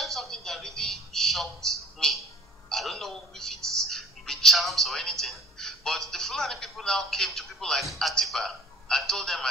something that really shocked me. I don't know if it's with charms or anything, but the Fulani people now came to people like Atiba and told them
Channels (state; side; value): normal; both; correlation 0.50